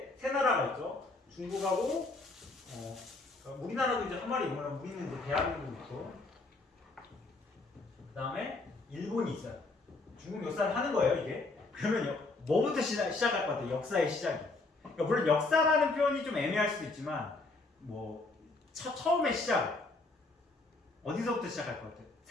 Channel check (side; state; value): right; quieter; 3.4 dB